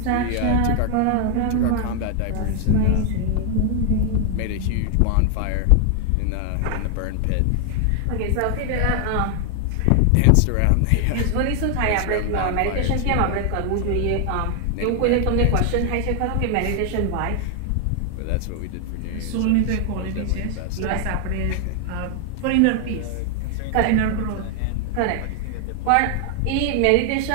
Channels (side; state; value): both; different; correlation 0.00